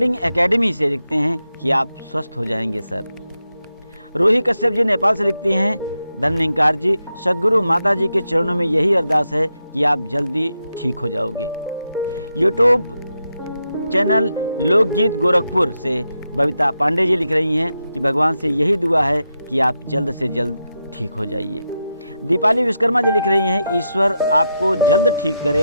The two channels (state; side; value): inverted; both; correlation -0.86